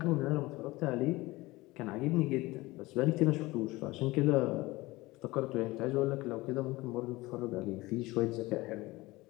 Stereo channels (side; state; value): right; quieter; 20.5 dB